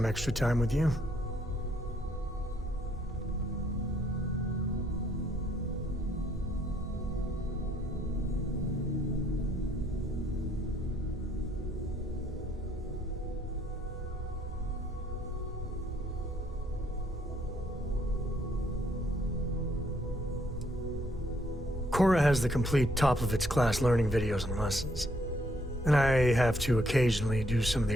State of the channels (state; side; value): normal; both; correlation 0.68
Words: extra time with you. Cora has the complete top-of-its-class learning videos and lessons. And I have to occasionally do some of